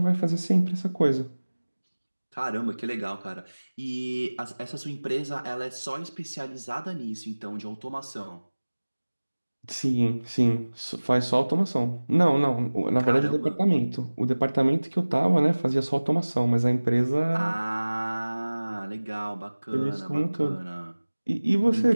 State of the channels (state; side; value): inverted; both; correlation -1.00